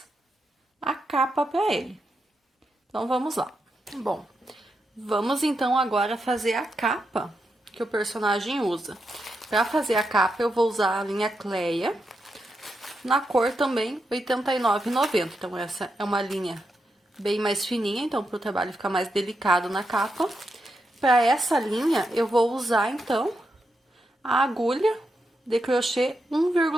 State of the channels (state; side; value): normal; both; correlation 0.85